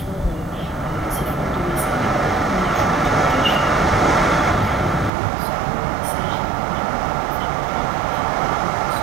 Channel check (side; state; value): left; drops out; at 5.1 s